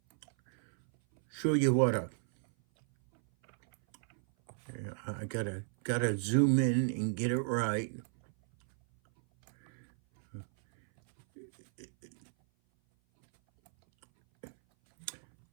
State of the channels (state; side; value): silent; left; 55 dB below the other